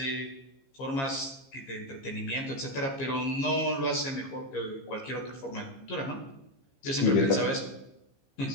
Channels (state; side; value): late; right; 15 ms